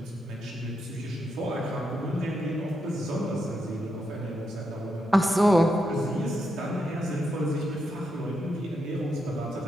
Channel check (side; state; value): both; normal; correlation 0.83